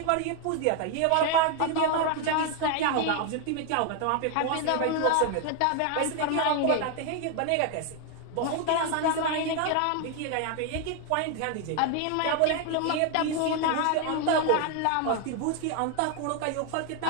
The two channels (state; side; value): different; both; correlation 0.00